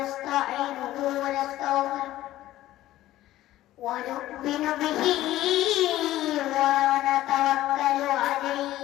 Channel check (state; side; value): quieter; right; 14.9 dB